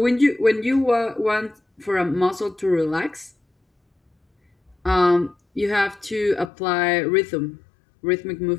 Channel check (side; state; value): right; drops out; at 6.5 s